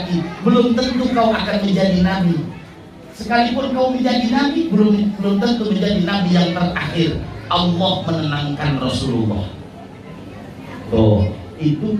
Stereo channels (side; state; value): both; identical; correlation 1.00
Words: belum tentu kau akan menjadi Nabi. Sekalipun kau menjadi Nabi, belum tentu menjadi Nabi yang terakhir. Allah menenangkan Rasulullah. Tuh, itu